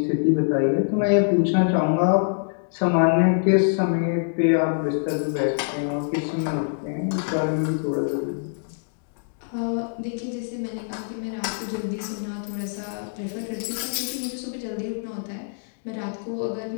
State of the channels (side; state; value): right; silent; digital silence